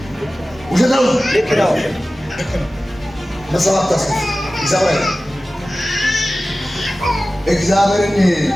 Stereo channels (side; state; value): both; normal; correlation 0.96